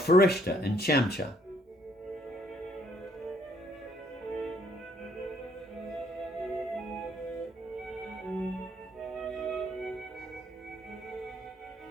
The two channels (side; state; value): both; normal; correlation 0.67